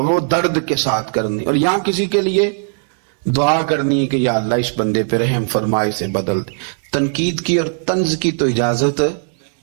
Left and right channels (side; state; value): left; silent; digital silence